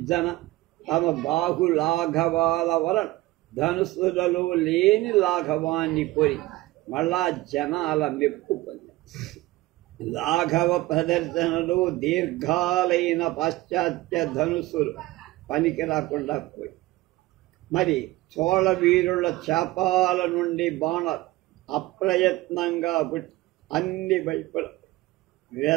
తమ బాహు లాఘవాల వలన ధనుస్సులలో లేని లాఘవాన్ని కోరి మళ్ళా జనాల మెప్పు పొందారు. లాఘవ ప్రదర్శనలో దీర్ఘాలైన పాశ్చాత్య ధనుస్సులు పనికి రాకుండా పోయి, మరి చోళ వీరుల చాపాల నుండి బాణాలు అప్రయత్నంగా అన్ని వైపుల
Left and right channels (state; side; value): quieter; left; 18.6 dB